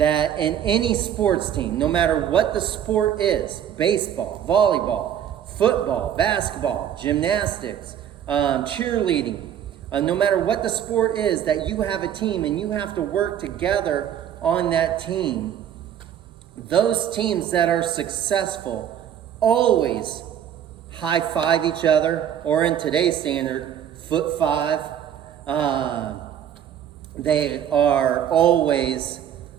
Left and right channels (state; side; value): quieter; left; 9.8 dB